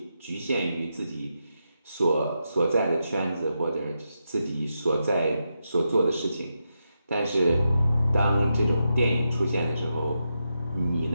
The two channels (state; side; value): inverted; both; correlation -0.86